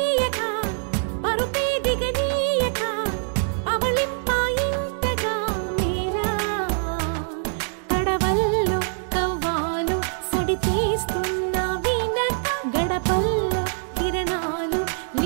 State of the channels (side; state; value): left; silent; digital silence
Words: పరుపే దిగనీయక అవళింపాయింతగా మేరా కడవల్లో కవ్వాలు సడి చేస్తున్న వీణత గడపల్లో కిరణాలు